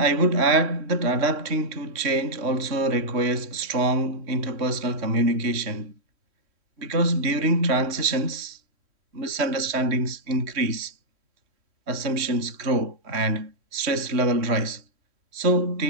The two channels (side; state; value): left; late; 3.1 ms